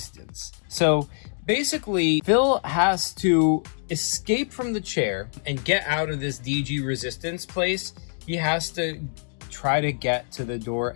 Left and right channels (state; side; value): silent; right; 60 dB below the other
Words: So basically, Phil has to escape from the chair and get out of this DG Resistance place. He has to try to get to the door